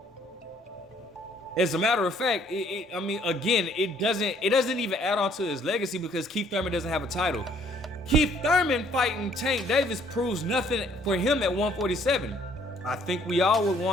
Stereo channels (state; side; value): normal; both; correlation 0.63